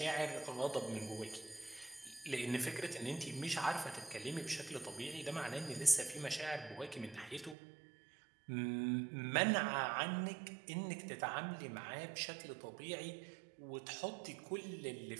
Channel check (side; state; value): left; drops out; at 7.6 s